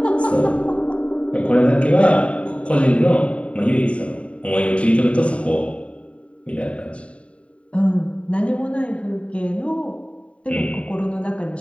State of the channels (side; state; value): right; late; 0.063 ms